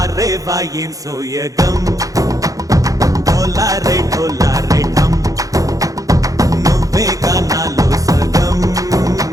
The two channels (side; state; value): left; late; 0.17 ms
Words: వాయేం సోయగం ढोला रे ढम నువ్వే గానాలో సగం